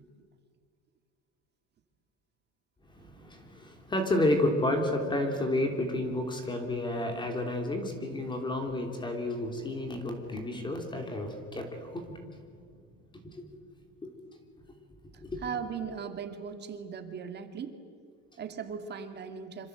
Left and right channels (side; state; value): both; normal; correlation 0.52